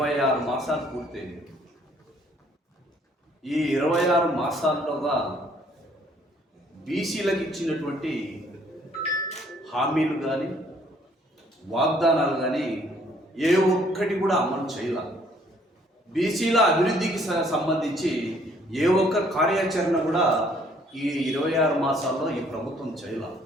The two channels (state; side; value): normal; both; correlation 0.63